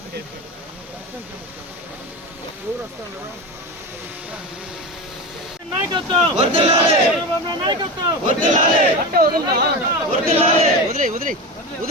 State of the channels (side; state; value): both; normal; correlation 0.23